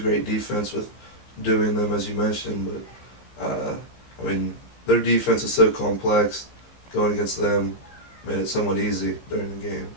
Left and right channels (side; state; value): right; late; 16 ms